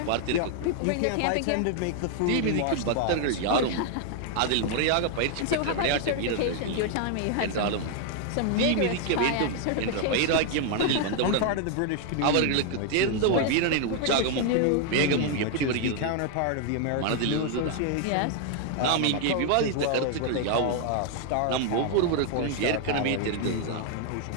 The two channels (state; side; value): different; both; correlation 0.00